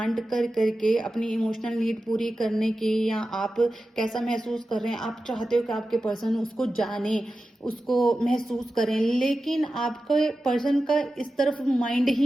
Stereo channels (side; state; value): both; normal; correlation 0.93